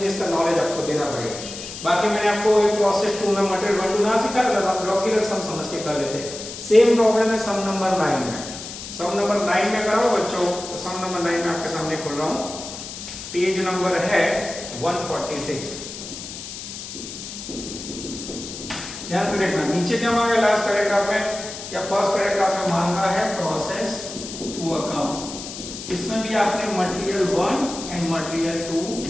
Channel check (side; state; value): left; noise; hiss, 10 dB below the sound